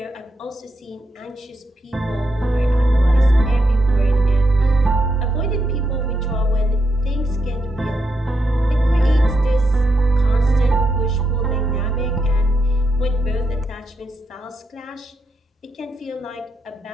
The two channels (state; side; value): normal; both; correlation 0.82